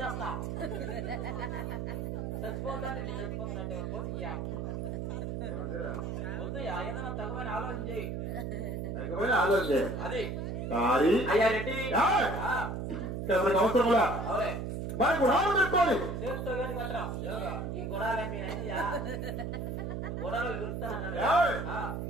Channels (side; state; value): right; noise; hum, 3 dB below the sound